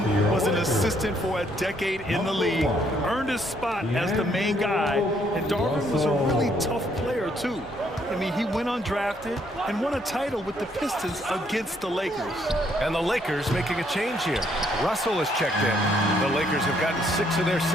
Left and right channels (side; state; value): both; normal; correlation 0.70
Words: was an assistant for a decade in the league, earned his spot as the main guy, and Darvin was a really tough player, too. I mean, he went undrafted and won a title with the Pistons against the Lakers. And the Lakers making a change here. Russell has checked in. The Lakers have gotten 6 of their